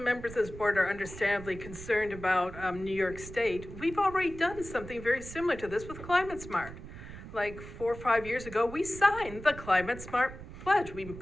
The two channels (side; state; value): right; noise; rumble, 13 dB below the sound